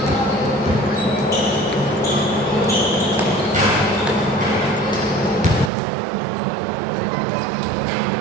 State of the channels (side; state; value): left; drops out; at 5.7 s